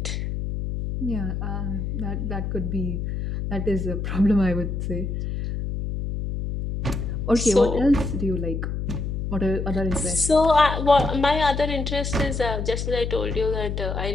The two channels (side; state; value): left; noise; hum, 3 dB below the sound